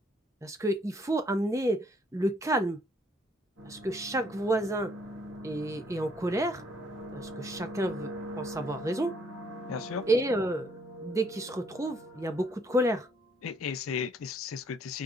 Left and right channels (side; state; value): both; normal; correlation 0.66